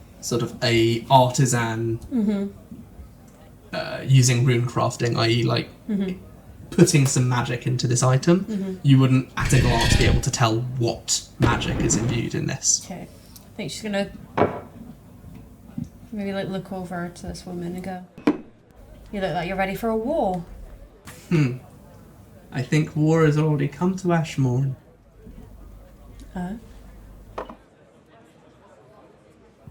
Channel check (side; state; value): both; identical; correlation 1.00